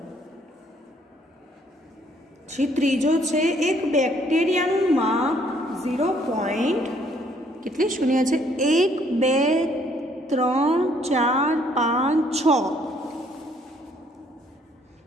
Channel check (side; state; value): both; normal; correlation 0.65